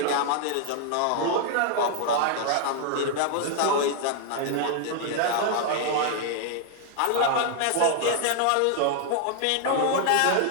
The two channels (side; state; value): both; different; correlation 0.00